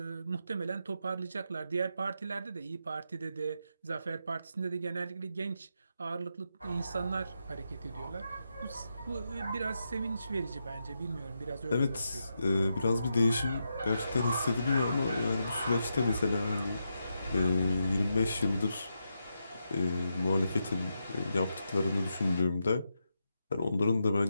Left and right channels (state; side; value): inverted; both; correlation -0.85